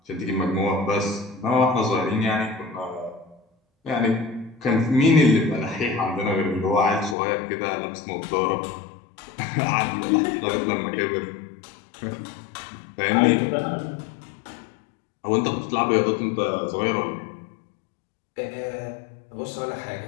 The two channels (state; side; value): drops out; right; at 7.2 s